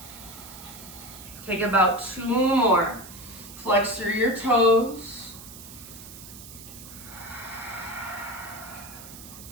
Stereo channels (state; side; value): noise; right; hiss, 15 dB below the sound